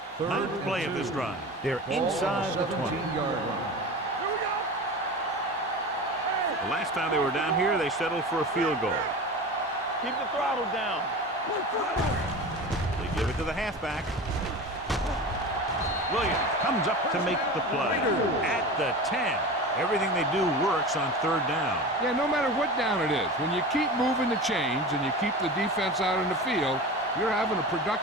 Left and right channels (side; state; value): both; normal; correlation 0.31